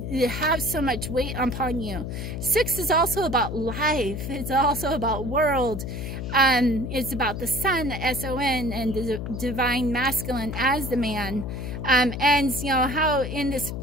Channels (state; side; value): noise; left; hum, 5 dB below the sound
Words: have so much weight upon you. 6 is also about life. It's also about world. It's about the sun, the S-O-N, and the divine masculine as the man. And how in this